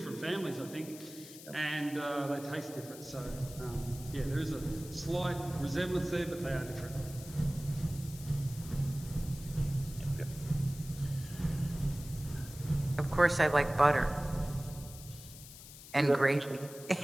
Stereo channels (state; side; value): noise; left; hiss, 16 dB below the sound